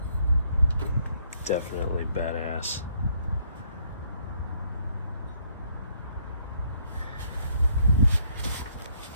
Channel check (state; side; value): inverted; both; correlation -0.69